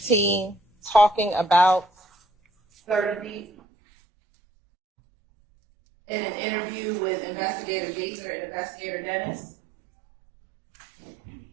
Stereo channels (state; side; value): drops out; left; at 3.5 s